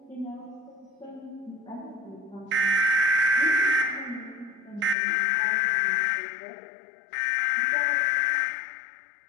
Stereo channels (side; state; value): right; drops out; at 5.0 s